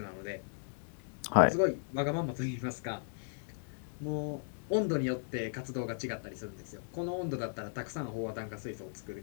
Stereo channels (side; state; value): right; silent; digital silence